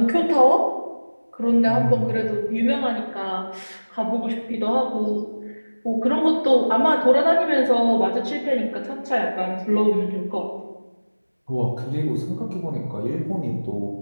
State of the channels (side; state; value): both; inverted; correlation -1.00